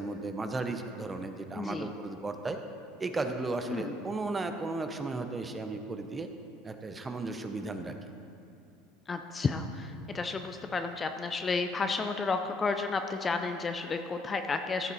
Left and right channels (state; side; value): normal; both; correlation 0.72